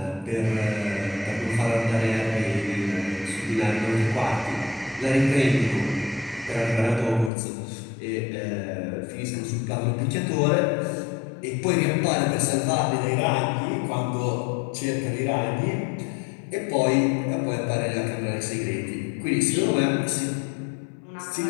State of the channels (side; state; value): right; drops out; at 7.3 s